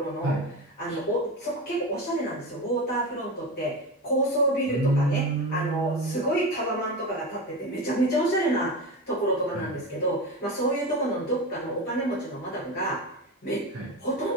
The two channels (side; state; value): both; normal; correlation 0.23